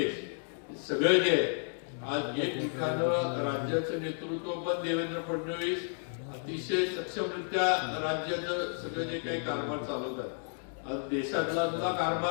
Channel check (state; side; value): silent; right; 56 dB below the other